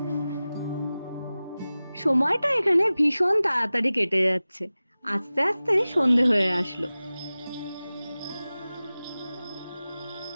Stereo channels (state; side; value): inverted; both; correlation -0.97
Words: সময়টা এখানে ভীষণ তাড়াতাড়ি কেটে যাচ্ছে, আস্তে আস্তে সন্ধে হয়ে আসলো।